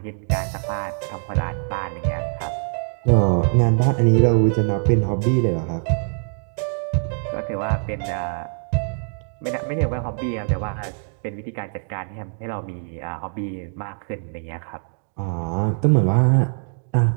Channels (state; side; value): silent; left; 58 dB below the other